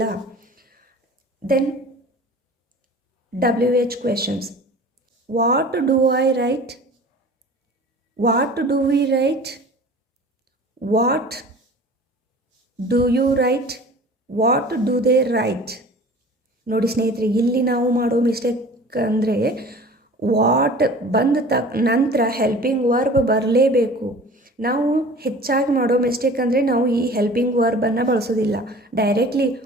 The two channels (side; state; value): both; normal; correlation 0.43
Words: Then WH questions. What do I write, what do we write, what do you write, what do they write. ನೋಡಿ ಸ್ನೇಹಿತರೆ, ಇಲ್ಲಿ ನಾವು ಮಾಡೋ ಮಿಸ್ಟೇಕ್ ಅಂದರೆ ವಾಟ್ ಬಂದ ನಂತರ ಹೆಲ್ಪಿಂಗ್ ವರ್ಬ್ ಬರಲೇಬೇಕು. ನಾವು ಹೆಚ್ಚಾಗಿ ಮಾಡೋ ಮಿಸ್ಟೇಕ್ ಅಂದರೆ ನಾವು ಈ ಹೆಲ್ಪಿಂಗ್ ವರ್ಬನ್ನು ಬಳಸೋದಿಲ್ಲ. Directly